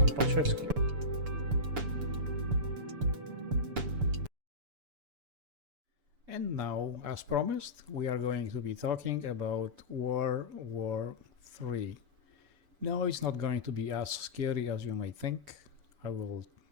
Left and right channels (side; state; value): left; late; 6.9 ms